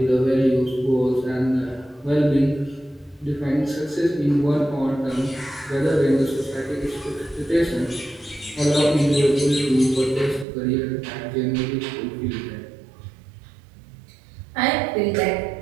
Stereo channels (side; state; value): left; drops out; at 10.5 s